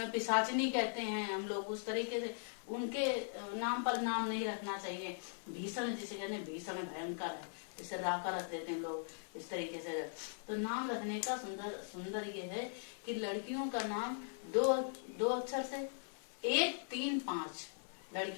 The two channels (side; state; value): right; silent; 51 dB below the other